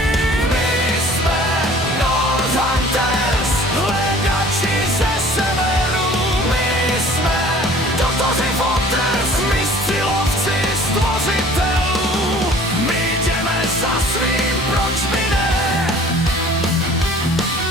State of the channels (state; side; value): normal; both; correlation 0.49